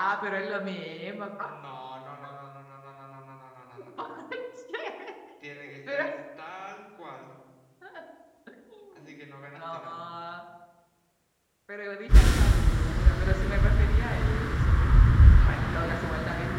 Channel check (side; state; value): both; identical; correlation 1.00